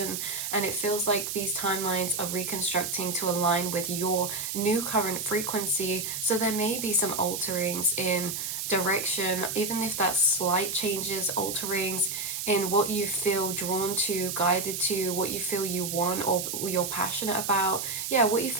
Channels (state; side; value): noise; right; hiss, 4 dB below the sound